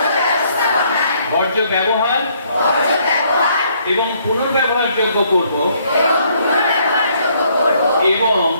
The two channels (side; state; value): both; inverted; correlation -0.67